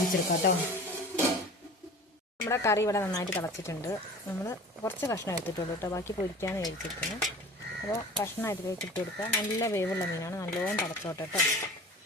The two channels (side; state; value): both; normal; correlation 0.40